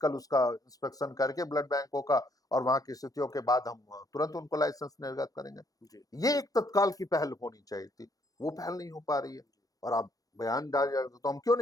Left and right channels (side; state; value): right; late; 0.17 ms